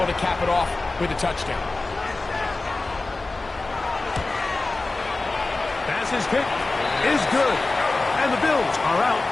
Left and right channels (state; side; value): quieter; right; 3.3 dB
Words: to cap it off with a touchdown. Pass's kick is good. And the Bills are out